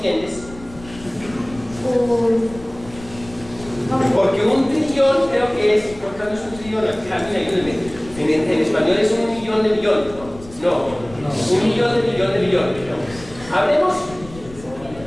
Porque un trillón creo que es, ¿cuánto es un trillón? En español es 1 millón de millones, ¿no? No, 1 millón de millones de millones. ¿No? Hablemos.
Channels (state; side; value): noise; left; rumble, 18 dB below the sound